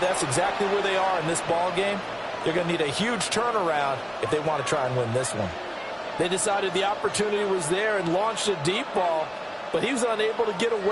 exactly where they are in this ball game. They're going to need a huge turnaround if they want to try and win this one. They decided the opportunity was there and launched a deep ball, but he was unable to get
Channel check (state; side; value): identical; both; correlation 1.00